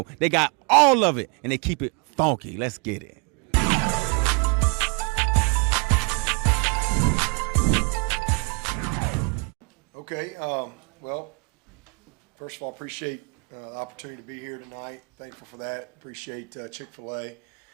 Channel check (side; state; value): left; quieter; 34.2 dB